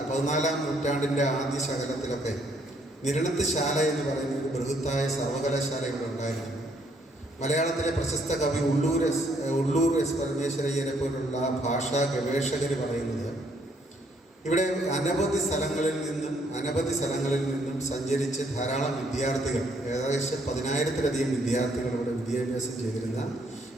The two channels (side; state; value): both; normal; correlation 0.69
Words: നൂറ്റാണ്ടിൻ്റെ ആദ്യ ശകലത്തിലൊക്കെ നിരണത്ത് ശാല എന്ന് പറയുന്ന ഒരു ബൃഹത്തായ സർവകലാശാല ഇവിടെ ഉണ്ടായിരുന്നു. മലയാളത്തിലെ പ്രശസ്ത കവി ഉള്ളൂർ എസ് പരമേശ്വരയ്യനെ പോലുള്ള ഭാഷാ ഗവേഷകർ പറയുന്നത് ഇവിടെ അനവധി സ്ഥലങ്ങളിൽ നിന്നും സഞ്ചരിച്ച് ധാരാളം വിദ്യാർത്ഥികൾ, ഏകദേശം 10,000-ത്തിലധികം വിദ്യാർത്ഥികൾ ഇവിടെ വിദ്യാഭ്യാസം ചെയ്തിരുന്ന